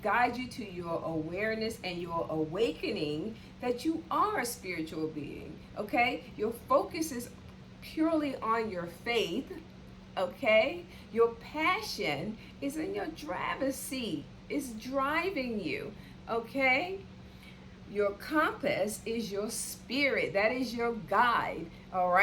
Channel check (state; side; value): identical; both; correlation 1.00